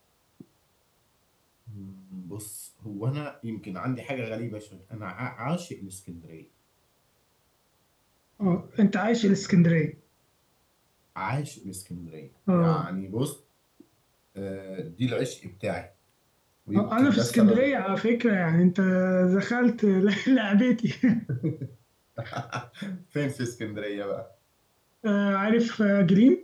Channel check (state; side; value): identical; both; correlation 1.00